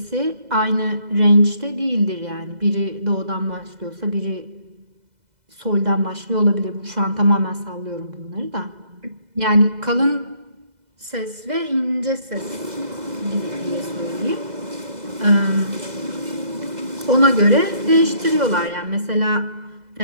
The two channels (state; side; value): late; left; 2.0 ms